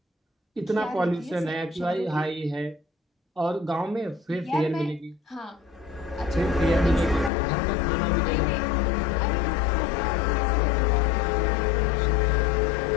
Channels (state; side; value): drops out; right; at 7.3 s